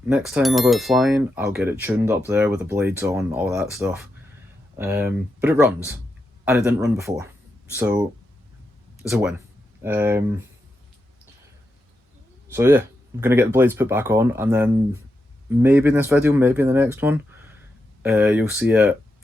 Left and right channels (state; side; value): normal; both; correlation 0.86